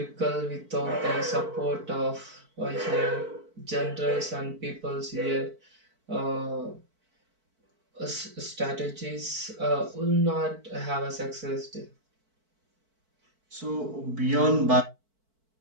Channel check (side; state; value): left; late; 4.5 ms